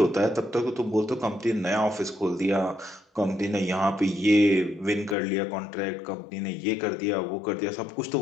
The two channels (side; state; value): right; drops out; at 5.2 s